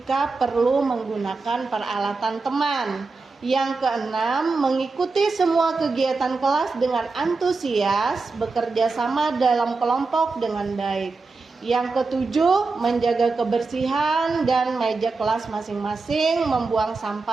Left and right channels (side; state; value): left; quieter; 4.0 dB